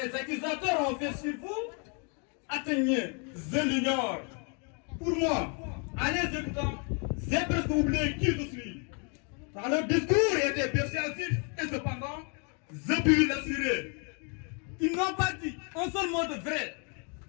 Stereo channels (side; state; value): right; quieter; 37.5 dB